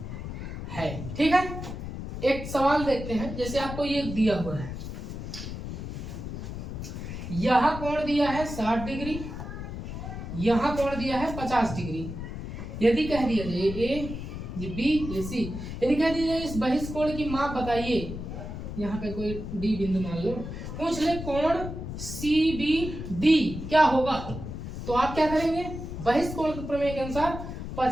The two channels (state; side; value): noise; left; rumble, 7 dB below the sound